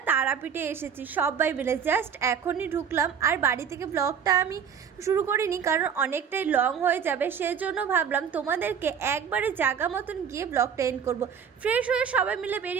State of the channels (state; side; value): quieter; left; 7.5 dB